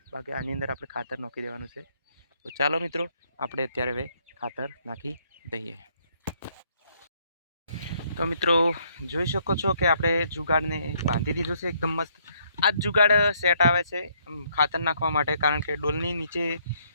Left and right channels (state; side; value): inverted; both; correlation -0.68